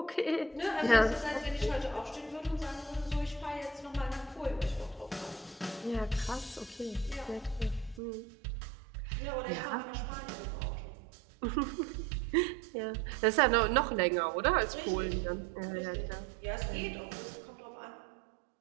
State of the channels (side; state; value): left; drops out; at 8.0 s